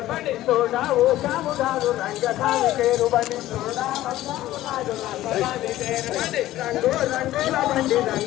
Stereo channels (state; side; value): quieter; right; 14.8 dB